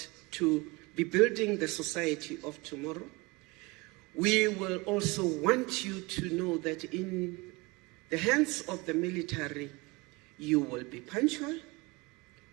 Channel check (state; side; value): quieter; left; 25.1 dB